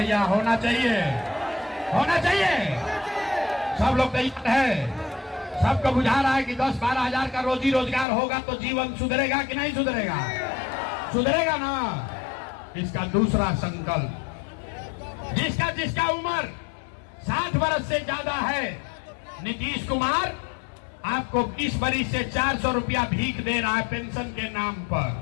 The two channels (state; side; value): drops out; right; at 8.1 s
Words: होना चाहिए, होना चाहिए। सब लोग तैयार है? सबको बुझा रहा है कि 10-12 हजार का रोजी रोजगार होगा तो जीवन सुधरेगा कि नहीं सुधरेगा? सुधरेगा ना। इसका दूसरा संकल्प, जिसका जिसका उम्र 60 वर्ष से ज्यादा है, नीतीश कुमार आपको 20 वर्ष से 400 रुपया भीख दे रहा है पेंशन के नाम पर।